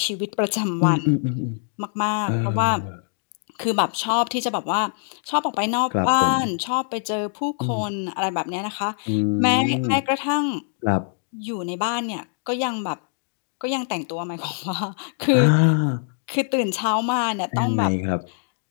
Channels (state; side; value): silent; right; 63 dB below the other